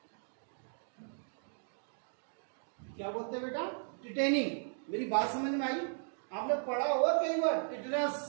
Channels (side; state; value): left; silent; digital silence